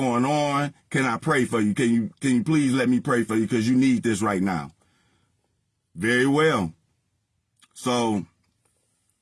on. Can I pray for you? Can you please let me pray for you? Cause you need this right now. Very well. So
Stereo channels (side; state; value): both; identical; correlation 1.00